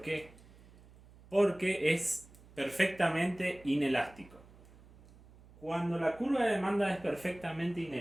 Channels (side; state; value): right; noise; hum, 24 dB below the sound